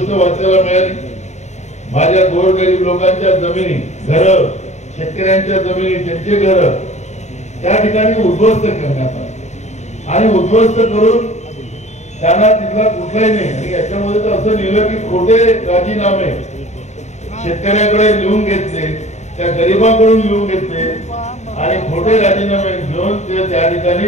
वाचायला मिळाली, माझ्या गोरगरीब लोकांच्या जमिनी घर शेतकऱ्यांच्या जमिनी त्यांचे घर त्या ठिकाणी उद्ध्वस्त करण्यात आले आणि उद्ध्वस्त करून त्यांना तिथला कुठलाही नाही। आणि याच्यामध्ये तर असं लिहिलं की खोटे राजीनामे शेतकऱ्याकडे लिहून घेतले, त्या गरिबांकडून लिहून घेतले आणि खोटे राजीनामे घेऊन ते त्या ठिकाणी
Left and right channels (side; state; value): right; late; 0.33 ms